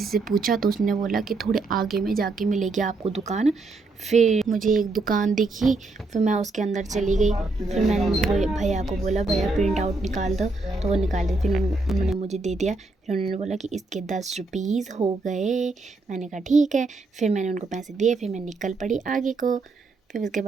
से पूछा तो उसने बोला कि थोड़े आगे में जाके मिलेगी आपको दुकान। फिर मुझे एक दुकान दिखी, फिर मैं उसके अंदर चली गई। फिर मैंने भैया को बोला भैया प्रिंट आउट निकाल दो, तो वो निकाल दी। फिर उन्होंने मुझे दे दिया। फिर उन्होंने बोला कि इसके 10 रुपीज़ हो गए। मैंने कहा ठीक है। फिर मैंने उनको पैसे दिए। फिर मैं निकल पड़ी आगे को। फिर उसके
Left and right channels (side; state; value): left; quieter; 3.5 dB